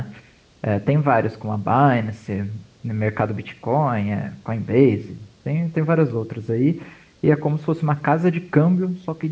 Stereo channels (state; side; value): identical; both; correlation 1.00